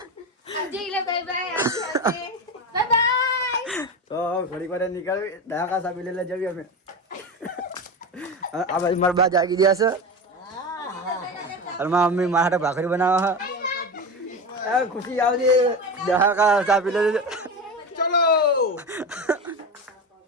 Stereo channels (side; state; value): both; normal; correlation 0.23